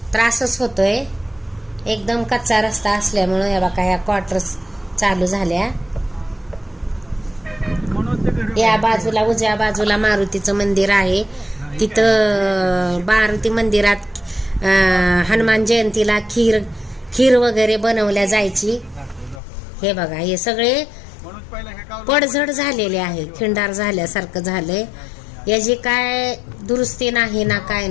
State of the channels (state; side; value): drops out; right; at 19.4 s